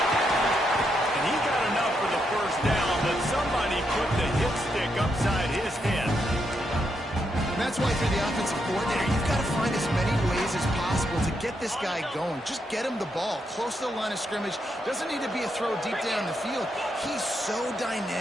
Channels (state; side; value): normal; both; correlation 0.80